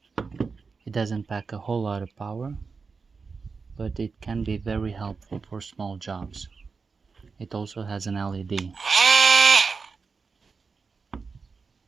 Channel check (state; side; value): quieter; left; 4.8 dB